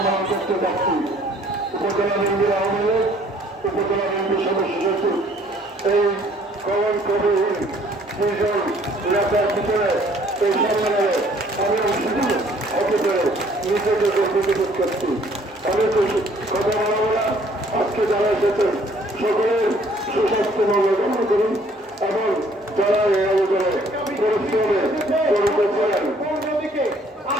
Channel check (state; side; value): normal; both; correlation 0.60